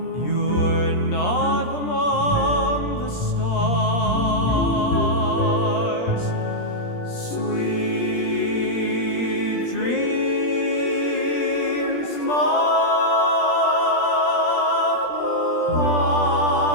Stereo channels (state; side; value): late; right; 17 ms